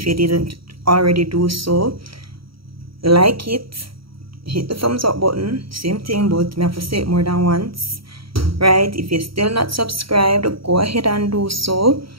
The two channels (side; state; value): left; late; 0.75 ms